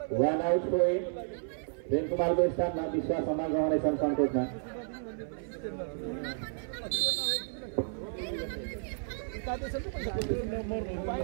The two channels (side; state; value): left; silent; 55 dB below the other